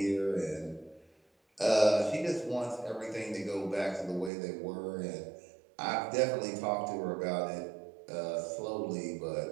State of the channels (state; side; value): drops out; left; at 4.3 s